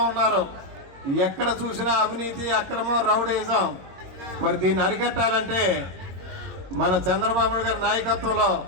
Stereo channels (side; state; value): left; late; 22 ms